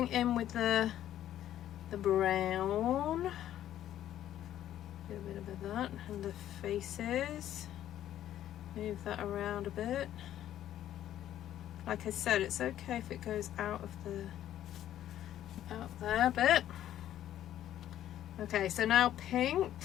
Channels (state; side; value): quieter; right; 11.9 dB